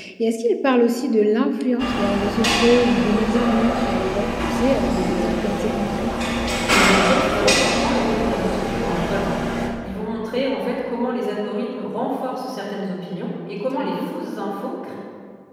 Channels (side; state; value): both; identical; correlation 1.00